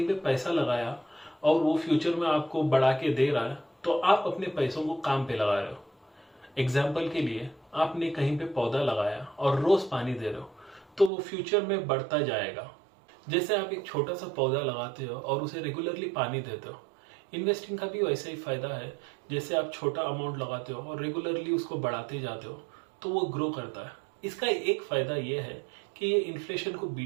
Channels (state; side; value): drops out; left; at 11.1 s